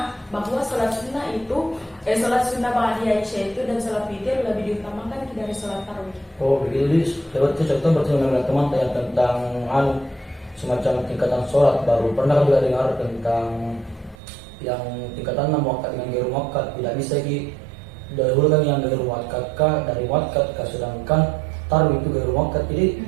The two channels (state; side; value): drops out; left; at 14.2 s